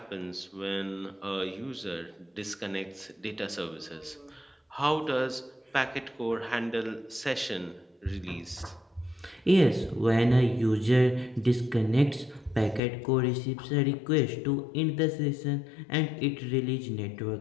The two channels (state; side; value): drops out; right; at 12.8 s